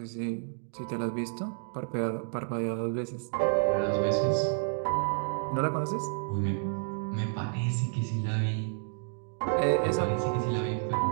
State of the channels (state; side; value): silent; left; digital silence